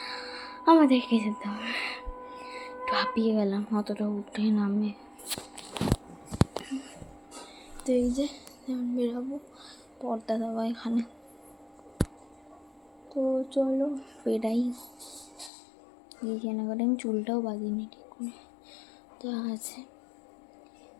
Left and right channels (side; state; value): right; drops out; at 15.5 s